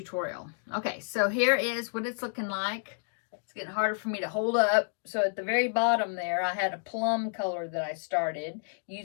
Okay, so here is what it's looking like. It's getting harder for me to hold up. So at the very bottom there, I had a plum color that I started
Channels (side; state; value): right; silent; digital silence